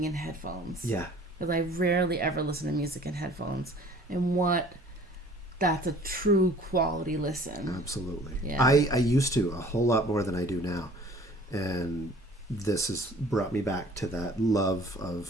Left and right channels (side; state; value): both; normal; correlation 0.50